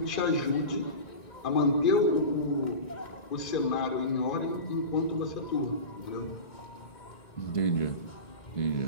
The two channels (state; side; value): late; right; 1.9 ms